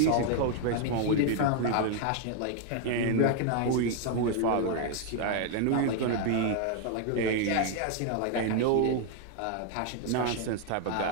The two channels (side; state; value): both; different; correlation 0.00